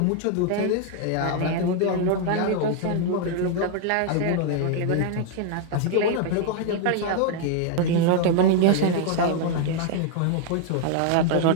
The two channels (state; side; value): different; both; correlation 0.00